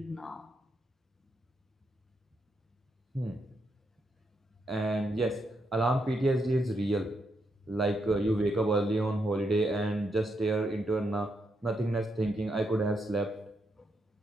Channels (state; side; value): normal; both; correlation 0.80